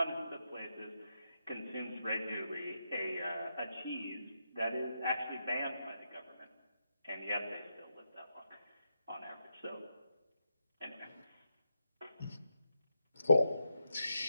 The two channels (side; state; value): both; inverted; correlation -0.85